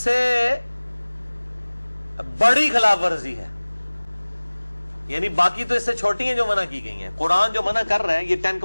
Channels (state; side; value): inverted; both; correlation -1.00